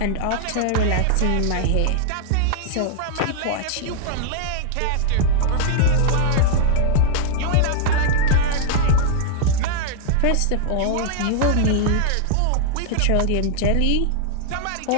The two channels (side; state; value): both; different; correlation -0.01